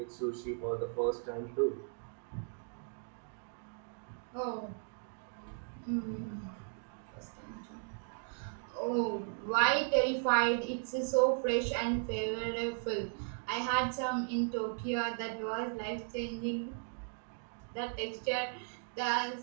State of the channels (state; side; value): silent; left; 53 dB below the other